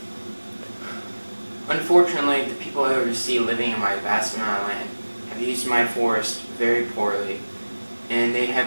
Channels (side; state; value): both; inverted; correlation -1.00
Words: Unfortunately, the people I oversee living in my vast amount of land have used my forest very poorly, and they